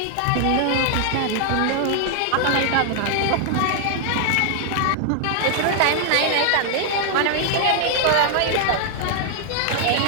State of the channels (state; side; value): different; both; correlation 0.00